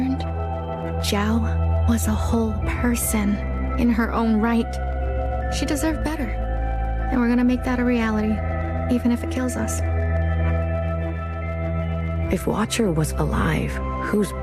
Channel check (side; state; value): both; identical; correlation 1.00